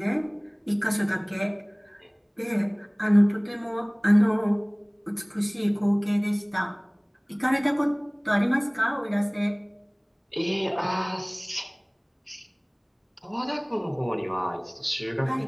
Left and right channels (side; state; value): both; identical; correlation 1.00